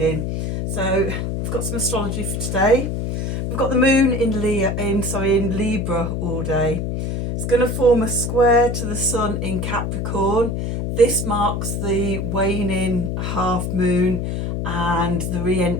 So I've got some astrology for today. We've got the moon in Libra all day. It's going to form a square to the sun in Capricorn. This marks the waning half moon and the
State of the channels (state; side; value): noise; left; hum, 2 dB below the sound